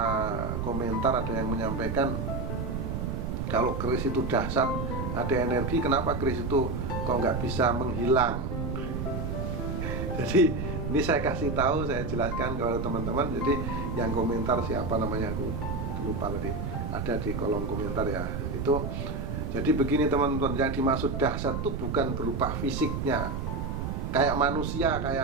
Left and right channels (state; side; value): noise; right; rumble, 3 dB below the sound